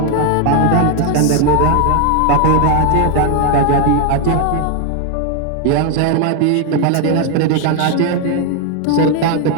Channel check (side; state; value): both; different; correlation 0.01